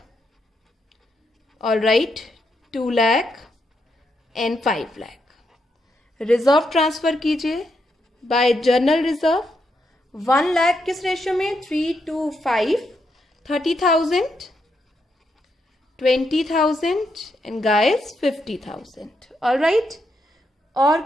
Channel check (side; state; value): both; normal; correlation 0.81